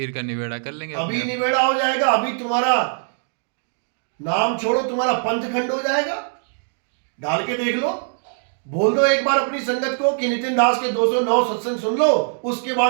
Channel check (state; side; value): silent; left; digital silence